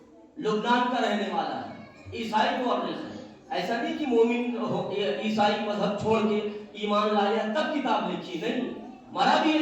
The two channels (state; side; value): identical; both; correlation 1.00